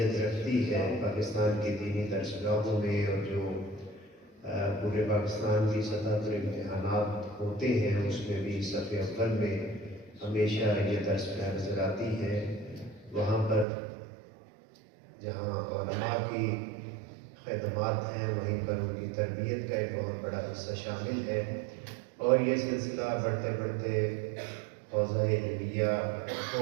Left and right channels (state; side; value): drops out; left; at 13.7 s